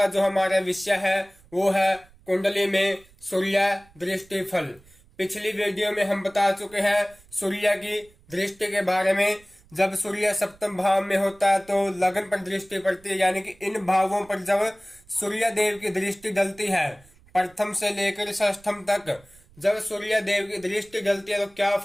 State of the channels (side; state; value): right; noise; rumble, 27 dB below the sound